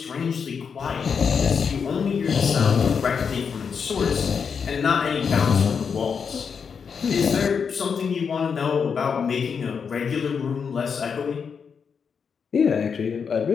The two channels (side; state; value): right; quieter; 6.3 dB